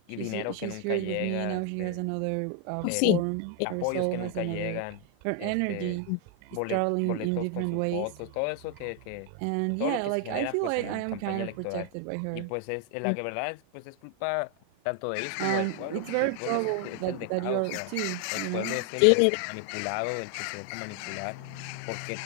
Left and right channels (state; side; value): different; both; correlation 0.00